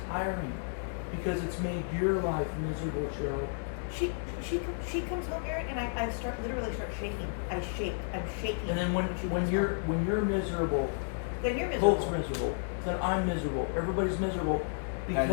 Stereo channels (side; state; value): right; silent; digital silence